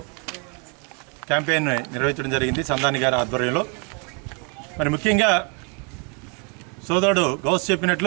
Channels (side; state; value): left; quieter; 35.4 dB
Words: క్యాంపెయిన్ నిర్వహించడం జరిగింది సందాని గారి ఆధ్వర్యంలో. మరి ముఖ్యంగా సోదరుడు గౌస్